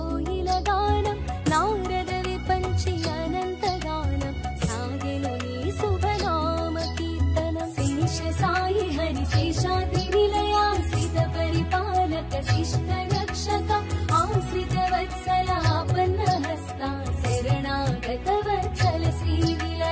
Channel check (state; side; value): identical; both; correlation 1.00